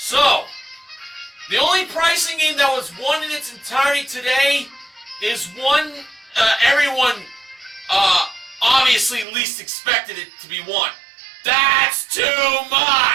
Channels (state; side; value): drops out; left; at 9.2 s